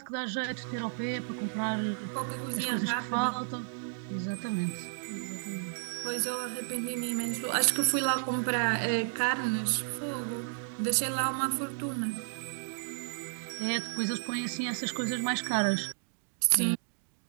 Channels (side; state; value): left; silent; digital silence